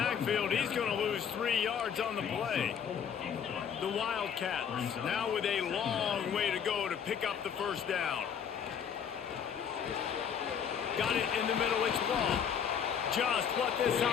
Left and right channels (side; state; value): right; quieter; 7.7 dB